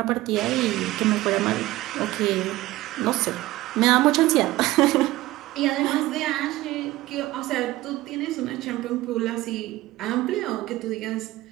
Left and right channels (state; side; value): quieter; left; 17.5 dB